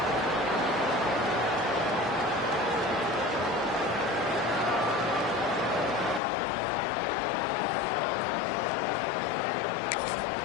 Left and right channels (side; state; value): right; drops out; at 6.2 s